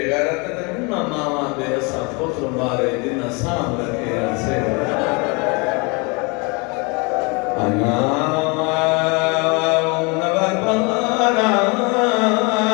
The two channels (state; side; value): quieter; right; 30.2 dB